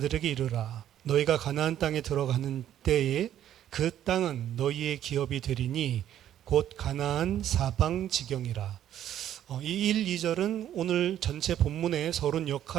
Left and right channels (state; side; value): quieter; left; 11.2 dB